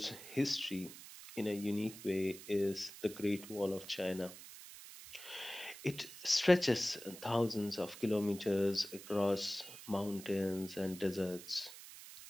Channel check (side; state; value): right; noise; hiss, 15 dB below the sound